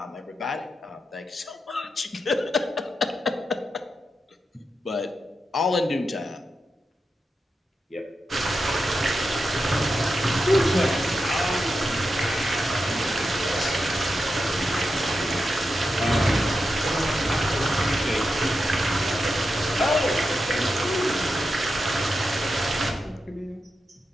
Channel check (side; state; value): both; normal; correlation 0.88